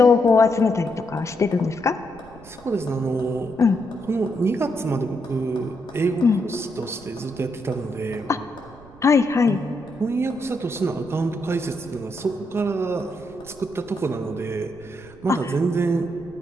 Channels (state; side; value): noise; right; rumble, 22 dB below the sound